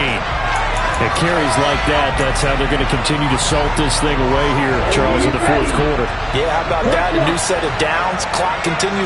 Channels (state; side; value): identical; both; correlation 1.00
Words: It carries like that. That's how they're going to continue to salt this thing away here, Charles, in the fourth quarter. Yeah, how about that? A new set of downs. Clock